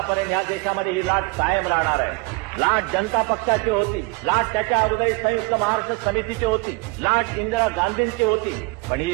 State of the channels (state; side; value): quieter; left; 27.7 dB